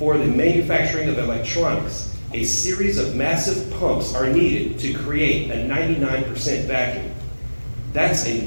the manufacturing of electronics, a series of massive pumps are needed to create a 99% vacuum. That's a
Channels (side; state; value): both; inverted; correlation -1.00